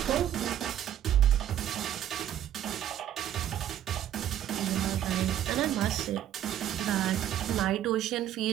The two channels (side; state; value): left; quieter; 11.1 dB